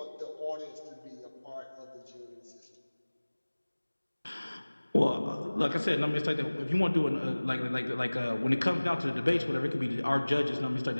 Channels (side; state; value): both; inverted; correlation -1.00